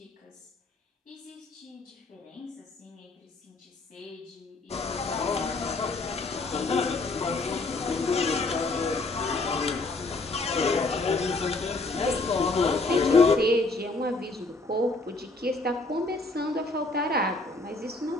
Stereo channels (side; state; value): right; quieter; 3.3 dB